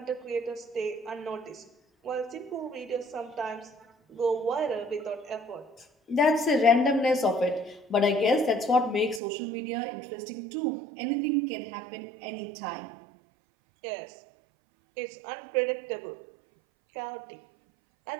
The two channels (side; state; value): left; drops out; at 9.2 s